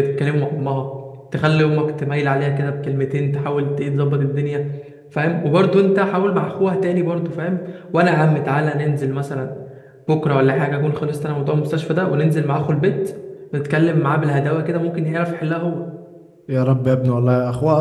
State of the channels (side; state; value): both; identical; correlation 1.00